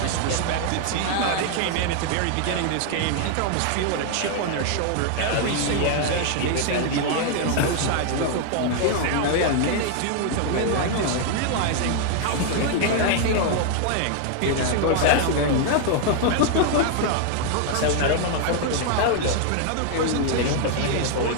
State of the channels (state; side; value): different; both; correlation 0.00